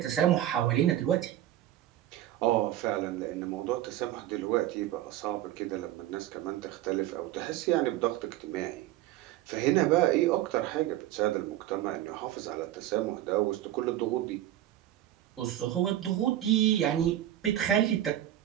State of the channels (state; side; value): quieter; left; 13.1 dB